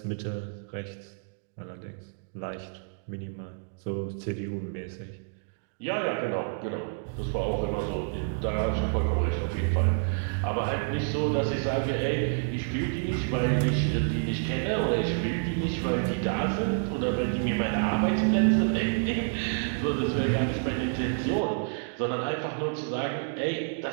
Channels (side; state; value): left; silent; digital silence